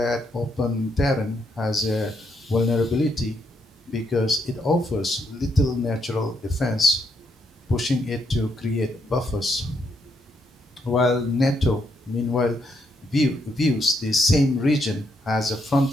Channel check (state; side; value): normal; both; correlation 0.76